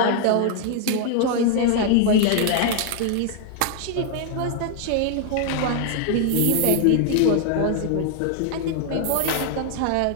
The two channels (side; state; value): both; different; correlation 0.00